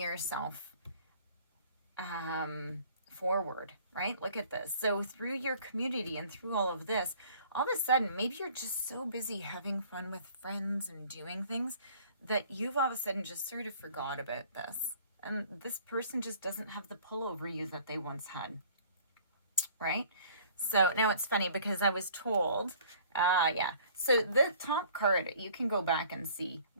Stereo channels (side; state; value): both; inverted; correlation -0.53